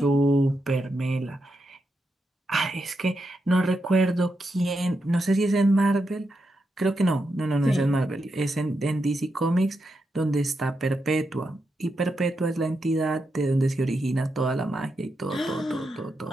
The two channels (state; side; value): normal; both; correlation 0.85